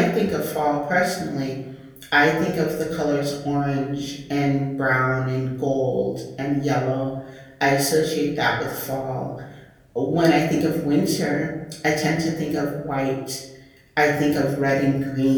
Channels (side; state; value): both; identical; correlation 1.00